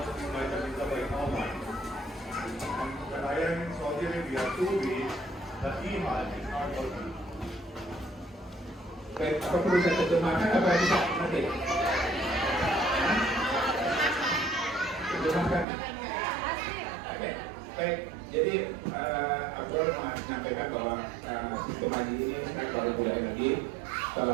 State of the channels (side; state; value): left; drops out; at 15.7 s